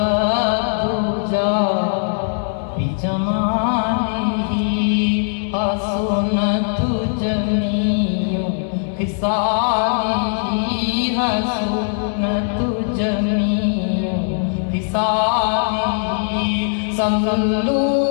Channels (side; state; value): right; silent; 59 dB below the other